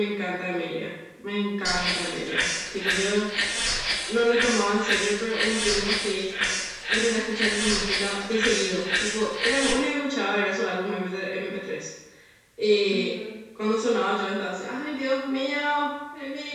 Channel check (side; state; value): both; identical; correlation 1.00